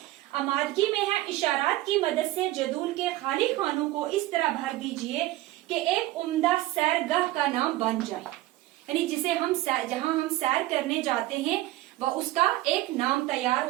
आमादगी में है, इशारात की मदद से जदूल के खाली खानों को इस तरह भर दीजिए कि एक उम्दा सैरगाह का नाम बन जाए। यानी जिसे हम जहां हम सैर करने जाते हैं वह उसका एक नाम तैयार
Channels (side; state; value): left; quieter; 16.9 dB